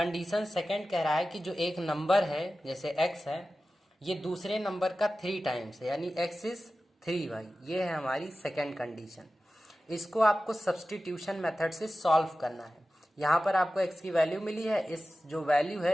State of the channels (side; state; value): both; normal; correlation 0.95